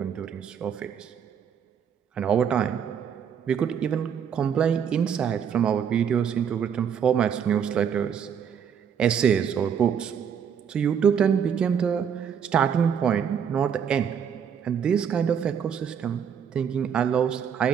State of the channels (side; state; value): left; quieter; 7.8 dB